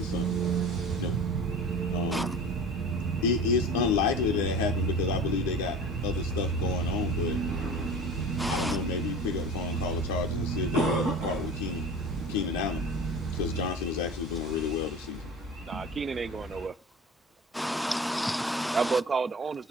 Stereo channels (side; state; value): both; normal; correlation 0.37